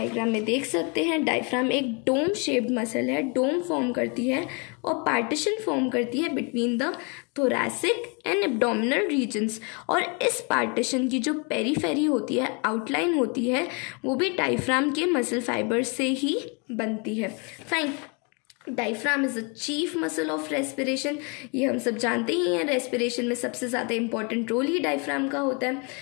में देख सकते हैं डायफ्राम एक डोम शेप्ड मसल है, डोम फॉर्म करती है और पार्टीशन फॉर्म करती है between the thoracic and abdominal regions. और इस पार्टीशन की जो पेरीफेरी होती है, आउटलाइन होती है, वो भी डायफ्राम के मसल फाइबर से ही बनती है। Fine. Diaphragm is a chief muscle of respiration. ये हम सब जानते ही हैं, रेस्पिरेशन में सबसे ज़्यादा इंपॉर्टेंट रोल ही डायफ्राम का होता है।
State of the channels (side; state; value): right; quieter; 33.8 dB